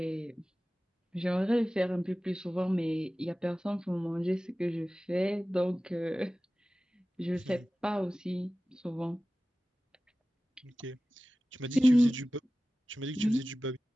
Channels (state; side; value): normal; both; correlation 0.96